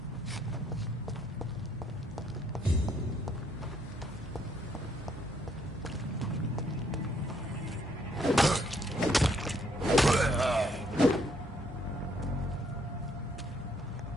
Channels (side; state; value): both; normal; correlation 0.69